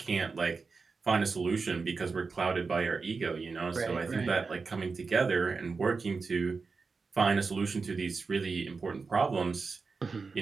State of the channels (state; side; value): quieter; left; 4.5 dB